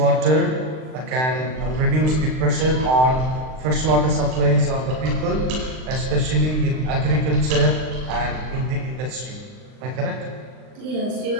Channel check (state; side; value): late; left; 39 ms